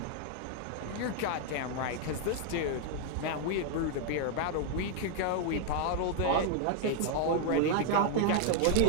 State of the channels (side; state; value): both; different; correlation 0.00